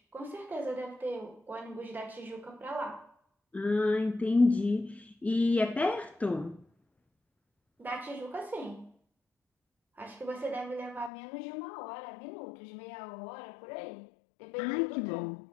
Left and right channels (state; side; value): drops out; right; at 11.1 s